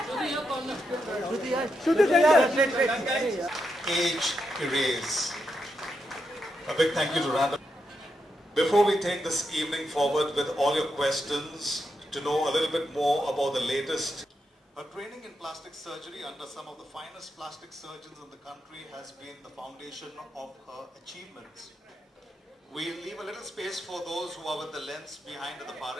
Shruti center. Age erase. A big thank you to Random. Before we take this evening forward with all your questions, to know a little bit more about the latest. Her training in plastic surgery under some of the finest plastic surgeons in the country has been the foundation of her achievements. We'll leave a little space for those who are with the lens behind at the far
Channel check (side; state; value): both; normal; correlation 0.84